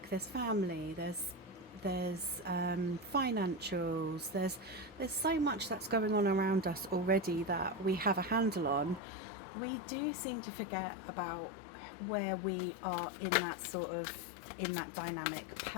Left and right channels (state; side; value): drops out; right; at 9.0 s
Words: there's family, there's financials, there's so much that's going on around us already that we have a handle on. We do seem to forget about where we are in that dynamic